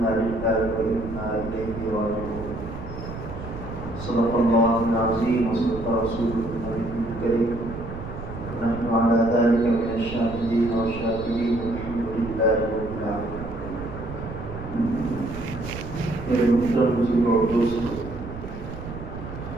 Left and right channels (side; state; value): right; noise; rumble, 10 dB below the sound